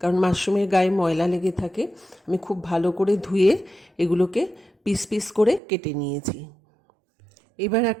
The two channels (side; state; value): left; drops out; at 5.6 s